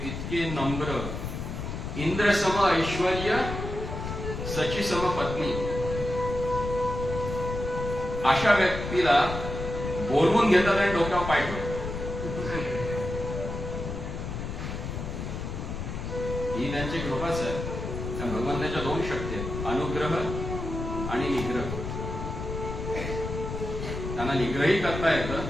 इतके नम्र, इंद्रसम ऐश्वर्य सचिसम पत्नी, अशा व्यक्तीला बोलवून घेतात आणि डोक्यावर पाय ठेवतात. ही त्यांची कृपाच आहे. त्या भगवंताच्या दोन शक्ती आहेत, अनुग्रह आणि निग्रह. त्यांना निग्रही करता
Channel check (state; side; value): noise; left; rumble, 5 dB below the sound